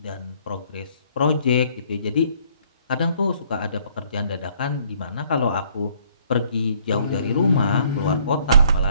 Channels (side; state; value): both; inverted; correlation -0.62